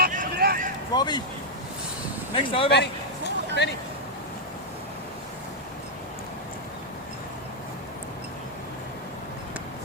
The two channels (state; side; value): normal; both; correlation -0.04